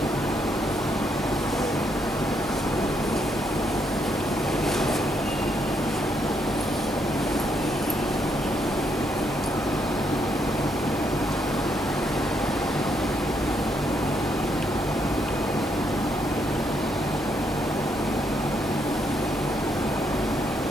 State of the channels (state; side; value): normal; both; correlation 0.75